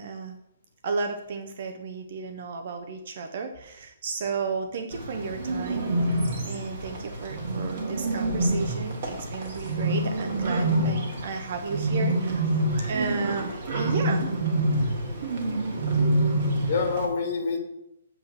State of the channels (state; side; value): inverted; both; correlation -0.64